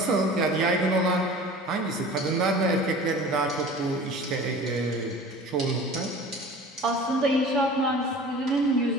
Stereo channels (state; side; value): normal; both; correlation 0.41